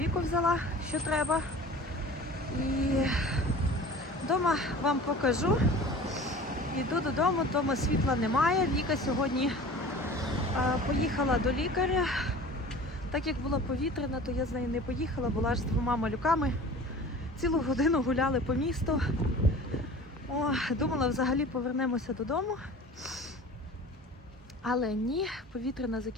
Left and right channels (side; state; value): both; normal; correlation 0.41